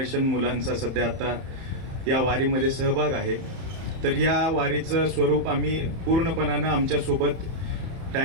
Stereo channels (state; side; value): late; left; 31 ms